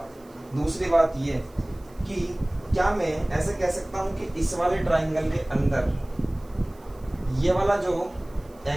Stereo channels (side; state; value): right; noise; hiss, 29 dB below the sound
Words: दूसरी बात ये कि क्या मैं ऐसे कह सकता हूँ कि इस वाले ट्राइंगल के अंदर ये वाला जो